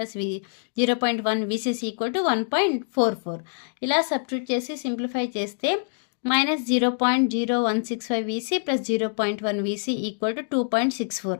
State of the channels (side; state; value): right; silent; digital silence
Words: 0.1 VCC equal to 1.44. ఇలా సబ్స్టిట్యూట్ చేసి సింప్లిఫై చేస్తే -0.0165 VC plus 0.1 VC equal to 2.64.